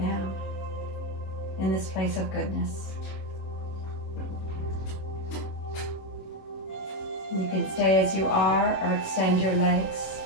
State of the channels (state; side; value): late; right; 26 ms